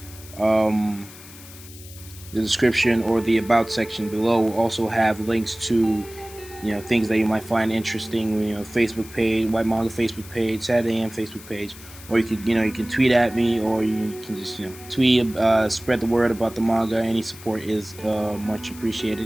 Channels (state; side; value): noise; left; hiss, 18 dB below the sound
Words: The description or the about section below will also have links to, you know, things that you might find interesting. You know, Facebook page, Whyt Manga Facebook page, Saturday AM Facebook page, or you could, you know, you can tweet at me, or you can just, you know, tweet, spread the word about the manga. Any support is much